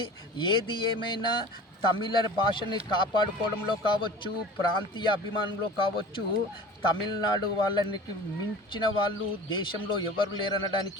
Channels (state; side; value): normal; both; correlation 0.39